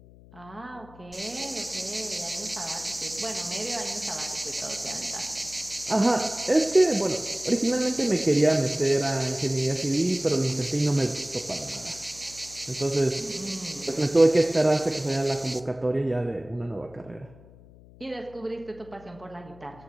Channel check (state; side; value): noise; left; hum, 22 dB below the sound